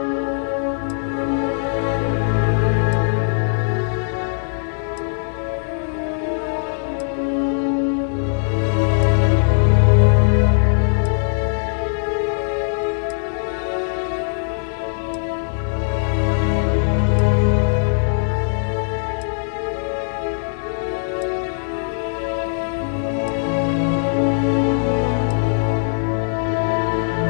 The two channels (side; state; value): right; silent; digital silence